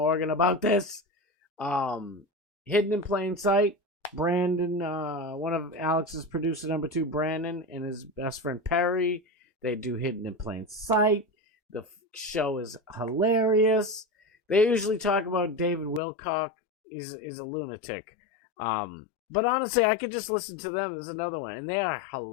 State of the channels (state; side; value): drops out; right; at 16.0 s